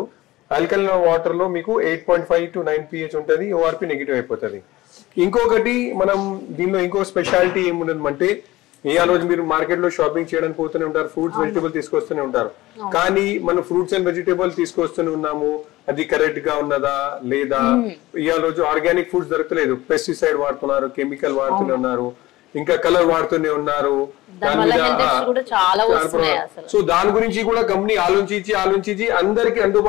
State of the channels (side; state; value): right; quieter; 18.0 dB